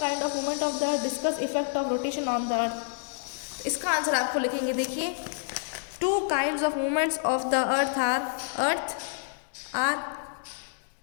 kind of movement of the earth, discuss effect of rotation on the earth. इसका आंसर आपको लिखेंगे। देखिए, two kinds of movements of the earth are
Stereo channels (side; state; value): right; silent; digital silence